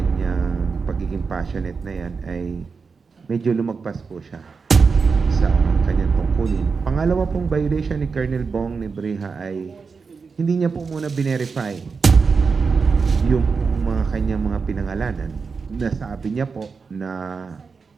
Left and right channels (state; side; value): quieter; left; 5.1 dB